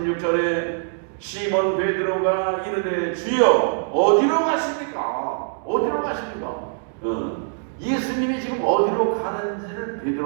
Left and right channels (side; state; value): left; silent; digital silence